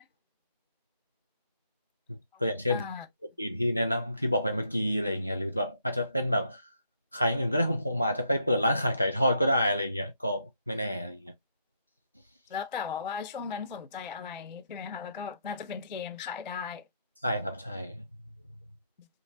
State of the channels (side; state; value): both; inverted; correlation -0.76